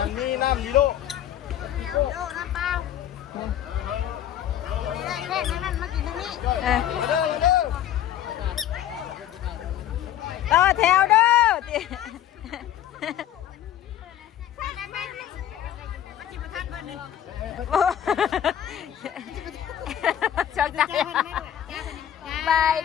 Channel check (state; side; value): quieter; right; 11.1 dB